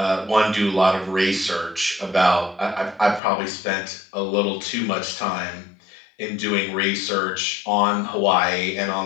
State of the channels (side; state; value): right; drops out; at 3.2 s